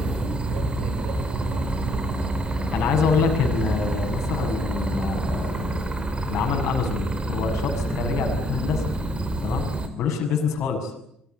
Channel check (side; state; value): both; normal; correlation 0.66